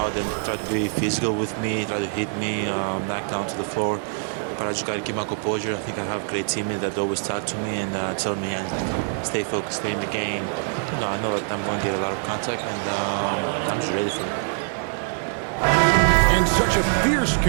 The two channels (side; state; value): left; silent; 62 dB below the other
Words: and try to be physical with me, try to hit me, knock down to the floor. But I just got to keep my composure. I think I have great teammates that always talk to me and tell me and stay focused, stay in the game. You know, I know that I'm going to get a lot of contact, and I'm just ready for it. And such a fierce